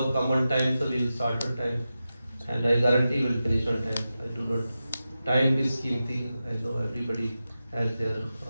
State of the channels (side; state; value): both; inverted; correlation -0.92